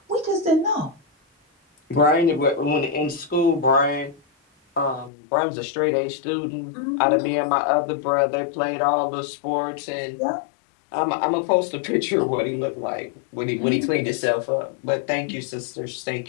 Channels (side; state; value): right; drops out; at 5.1 s